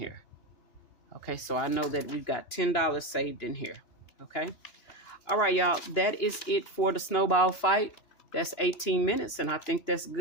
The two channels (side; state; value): right; late; 2.9 ms